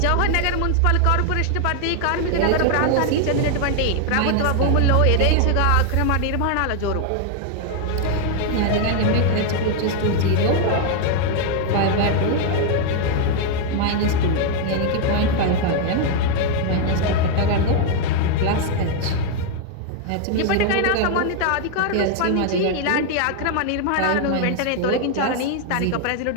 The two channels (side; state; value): both; different; correlation 0.00